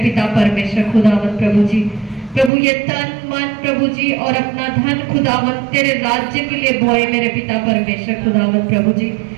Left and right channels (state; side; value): drops out; left; at 2.5 s